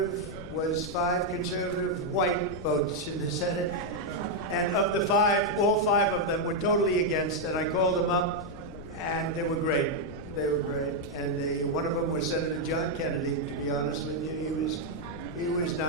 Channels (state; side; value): noise; left; rumble, 13 dB below the sound